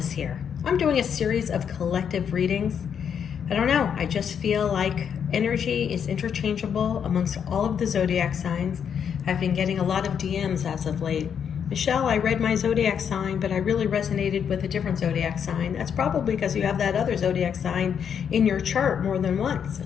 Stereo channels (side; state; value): right; quieter; 7.8 dB